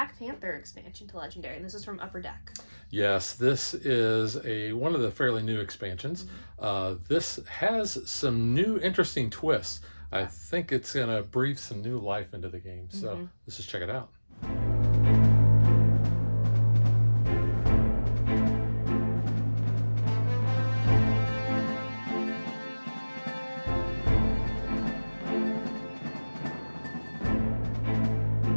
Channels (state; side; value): inverted; both; correlation -1.00